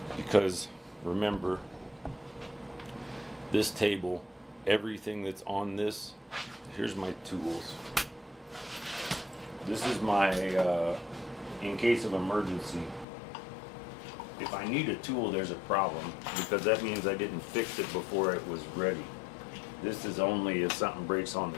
because remember, this table, everything that's on this, here's my tools. This is my, in case of emergency. If I need a tool, there's a problem, because that means I didn't fix it before it was ready. This is only if something breaks on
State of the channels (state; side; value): drops out; right; at 13.1 s